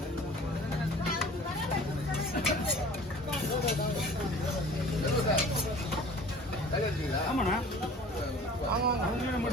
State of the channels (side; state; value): both; normal; correlation 0.46